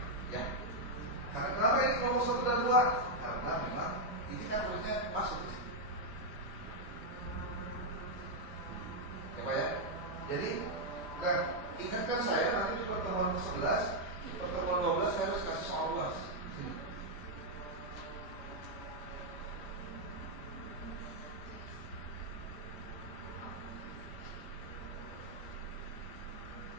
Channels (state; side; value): late; right; 5.0 ms